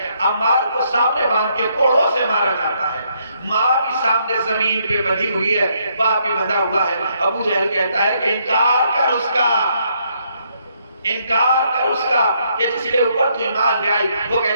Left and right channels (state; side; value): inverted; both; correlation -0.73